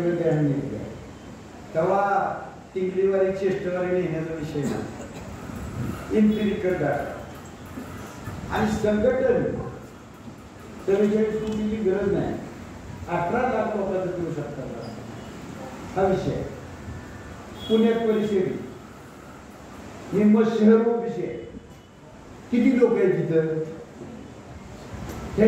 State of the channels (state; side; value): identical; both; correlation 1.00